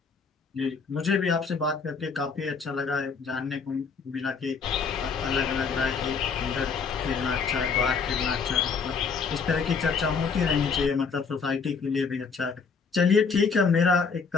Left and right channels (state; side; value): quieter; right; 5.5 dB